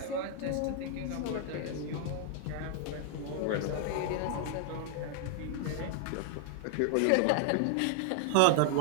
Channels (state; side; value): different; both; correlation 0.00